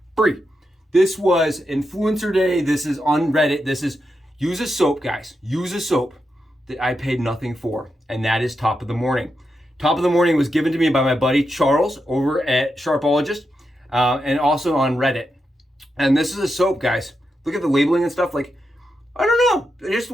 free. This was Influencer Day. This is on Reddit. This is use a soap, guys. Use a soap that I paid nothing for, and that is Top of the Morning. Top of the Morning was given to me by my buddy Charles over at Sharpologist, and also on Reddit. And this is a soap, guys. Look at the labeling and stuff. Like, I don't know. It just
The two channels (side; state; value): both; normal; correlation 0.86